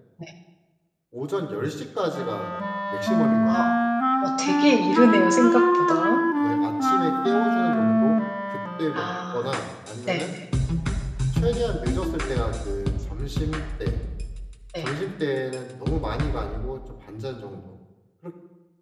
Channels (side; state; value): both; identical; correlation 1.00